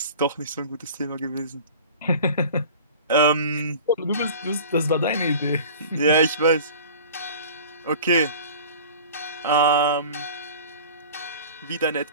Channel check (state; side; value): inverted; both; correlation -0.40